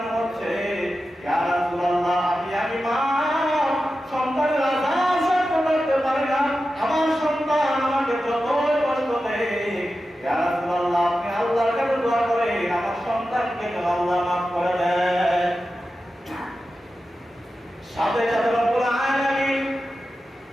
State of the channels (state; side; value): normal; both; correlation 0.92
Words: হচ্ছে। ইয়া রাসূলুল্লাহ, আমি মা সন্তানের আযাব সহ্য করতে পারি না, আমার সন্তান আমাকে যতই কষ্ট দেয়। ইয়া রাসূলুল্লাহ, আপনি আল্লাহর কাছে দোয়া করেন আমার সন্তানকে যেন আল্লাহ মাফ করে দেন। সাথে সাথে রব্বুল আলামিন